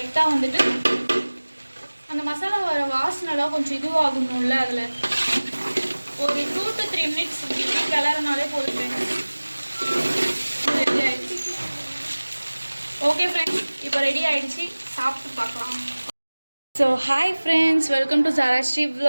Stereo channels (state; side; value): inverted; both; correlation -1.00